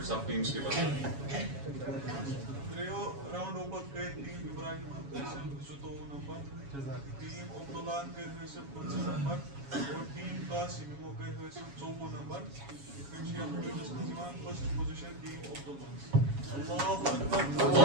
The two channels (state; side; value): late; left; 7.2 ms